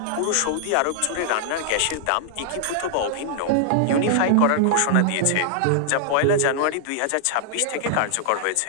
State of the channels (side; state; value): both; different; correlation -0.01